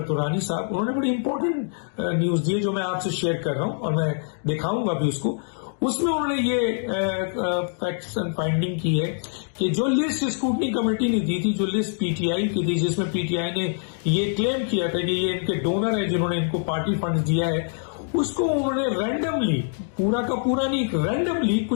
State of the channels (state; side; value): silent; right; digital silence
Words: तुरानी साहब, उन्होंने बड़ी इंपॉर्टेंट न्यूज दी है जो मैं आपसे शेयर कर रहा हूं और मैं दिखाऊंगा भी उसको। उसमें उन्होंने ये फैक्ट्स एंड फाइंडिंग की है कि जो लिस्ट स्क्रूटनी कमेटी ने दी थी, जो लिस्ट पीटीआई की थी, जिसमें पीटीआई ने ये क्लेम किया था कि ये इनके डोनर है जिन्होंने इनको पार्टी फंड दिया है, उसको उन्होंने रैंडमली, पूरा का पूरा नहीं, रैंडमली